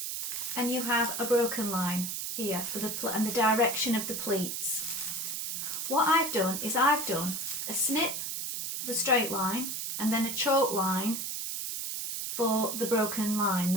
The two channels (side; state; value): right; noise; hiss, 3 dB below the sound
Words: and you have a broken line here for and the direction of the pleats. What I've done is I've done a snip for the straight line and then a chalk line for the broken line